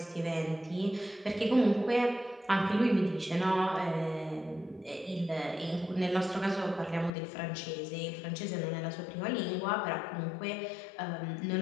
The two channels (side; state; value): right; drops out; at 7.1 s